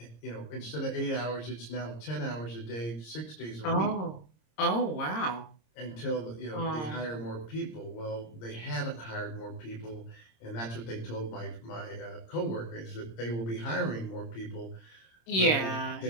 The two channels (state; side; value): late; right; 26 ms